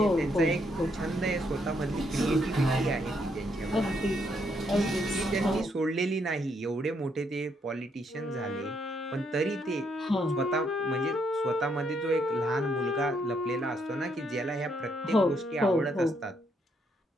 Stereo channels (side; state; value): both; normal; correlation 0.74